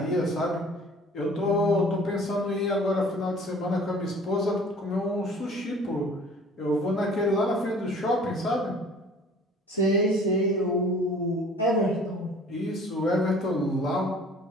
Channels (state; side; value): normal; both; correlation 0.49